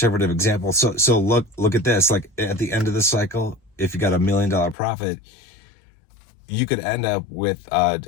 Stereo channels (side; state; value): right; drops out; at 4.8 s